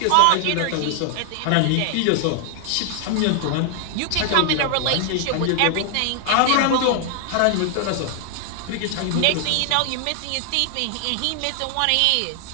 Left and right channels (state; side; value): different; both; correlation 0.00